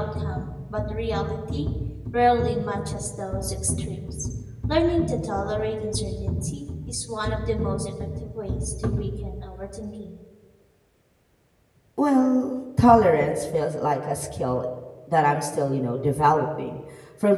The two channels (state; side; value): identical; both; correlation 1.00